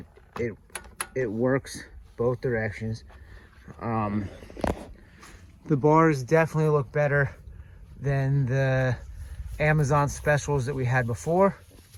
it works both directions. The bars definitely look better than the Amazon specials that we had before.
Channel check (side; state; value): both; identical; correlation 1.00